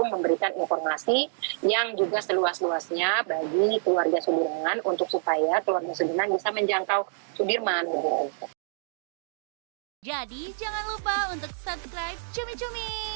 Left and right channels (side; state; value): left; silent; digital silence